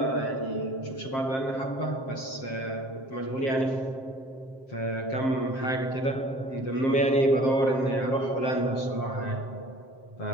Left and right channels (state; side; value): late; right; 7.6 ms